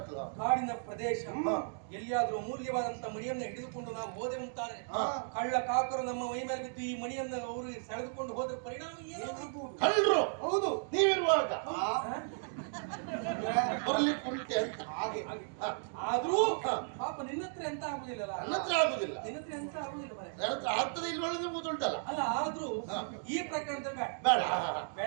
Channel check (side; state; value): left; silent; digital silence